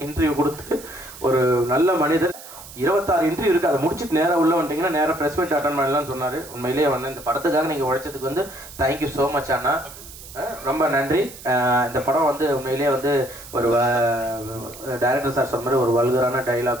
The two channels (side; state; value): right; noise; hiss, 16 dB below the sound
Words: இன்டர்வியூ கொடுத்து ஒரு நல்ல மனிதர். 26 இன்டர்வியூ இருக்குது, அதை முடிச்சுட்டு நேராக உள்ள வந்துட்டிங்கன்னா நேராக ப்ரெஸ் மீட் அட்டன் பண்ணலாம்னு சொன்னார். உண்மையிலேயே வந்து இந்த படத்துக்காக நீங்கள் உழைச்சதுக்கு வந்து தேங்க்யூ ஸோ மச் அண்ணா, ரொம்ப நன்றி. இந்த படம் வந்து உண்மையிலேயே வந்து ஒரு டைரக்டர் சார் சொன்ன மாதிரி ஒரு வல்கரான